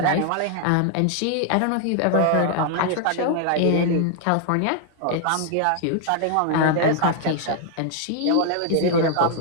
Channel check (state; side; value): different; both; correlation 0.00